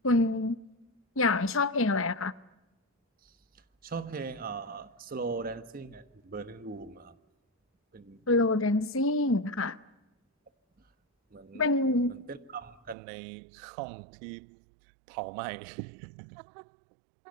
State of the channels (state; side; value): drops out; left; at 13.0 s